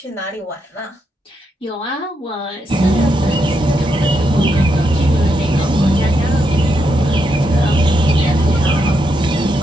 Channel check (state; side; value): normal; both; correlation 0.81